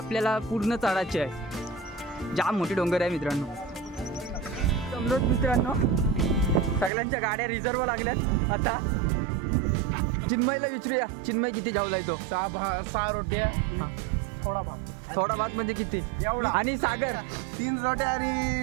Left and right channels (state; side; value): drops out; left; at 6.9 s